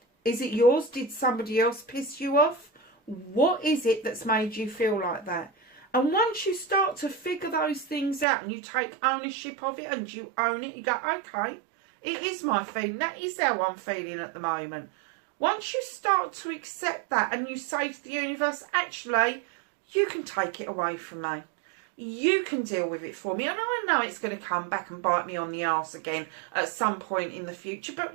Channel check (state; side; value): drops out; left; at 8.2 s